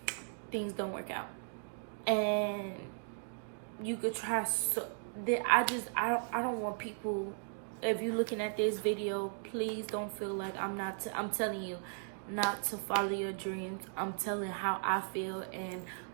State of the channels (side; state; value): left; silent; digital silence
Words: things don't work out. And you could try so... I don't want people... If you're looking at this video, please don't feel like I'm telling you not to follow your dreams. I'm telling how I feel and